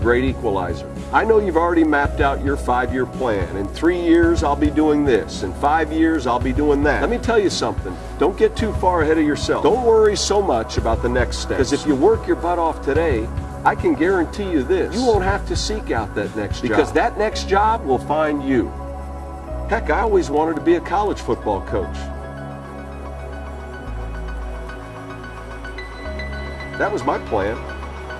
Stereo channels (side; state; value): both; identical; correlation 1.00